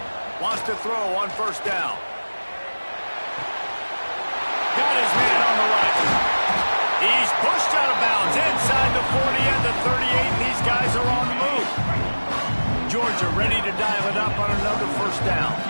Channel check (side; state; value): both; inverted; correlation -1.00